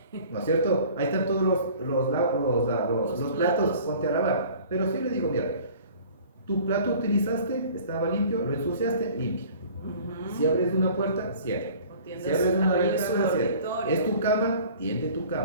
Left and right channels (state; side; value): inverted; both; correlation -0.48